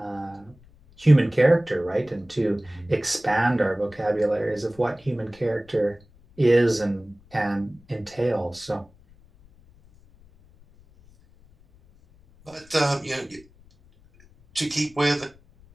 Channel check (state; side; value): noise; left; rumble, 27 dB below the sound